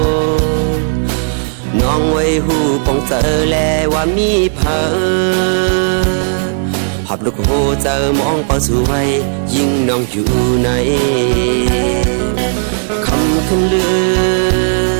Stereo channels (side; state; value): left; silent; digital silence